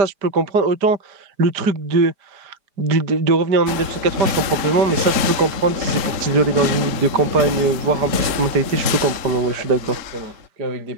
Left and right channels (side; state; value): left; late; 3.8 ms